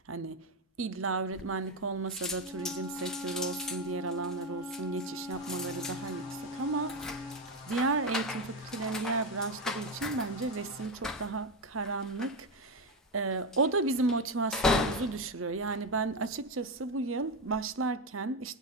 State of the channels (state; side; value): normal; both; correlation 0.12